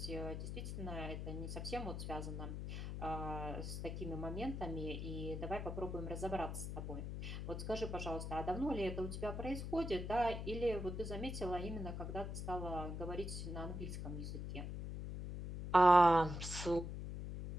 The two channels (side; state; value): left; noise; hum, 5 dB below the sound